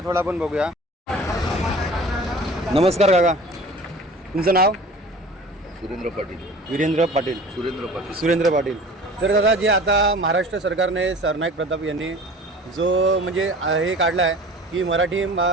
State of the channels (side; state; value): both; normal; correlation 0.42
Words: थोडा आपण बघूया. नमस्कार काका, तुमचं नाव? सुरेंद्र पाटील. वीरेंद्र पाटील. सुरेंद्र पाटील. तर दादा, जे आता महाराष्ट्र सरकारने सरनाईक प्रताप यांनी जो म्हणजे हे काढला आहे की